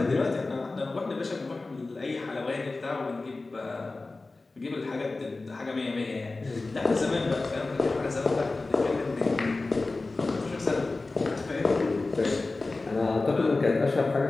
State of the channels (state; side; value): quieter; right; 3.4 dB